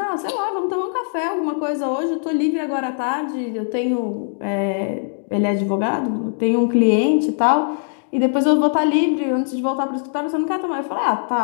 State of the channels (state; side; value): silent; right; digital silence